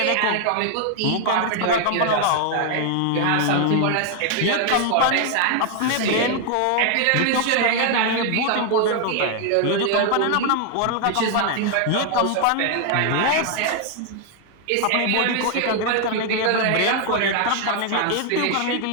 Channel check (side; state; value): both; different; correlation 0.00